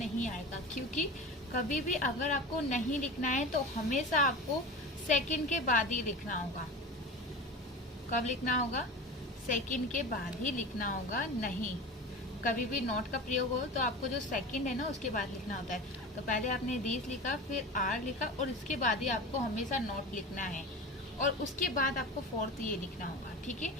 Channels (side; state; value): both; normal; correlation 0.31